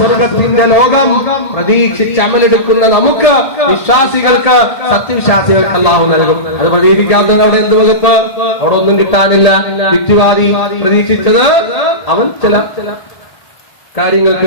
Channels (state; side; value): late; right; 1.7 ms